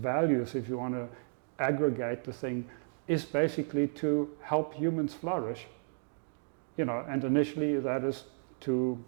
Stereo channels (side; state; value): left; silent; 56 dB below the other